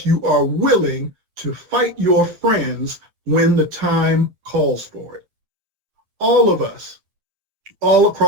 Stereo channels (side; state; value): left; late; 9.6 ms